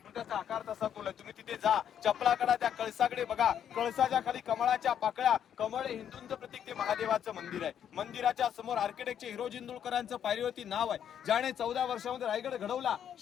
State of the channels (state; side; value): quieter; right; 9.2 dB